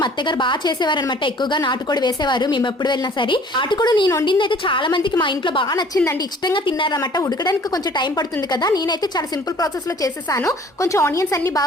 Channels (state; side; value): normal; both; correlation 0.53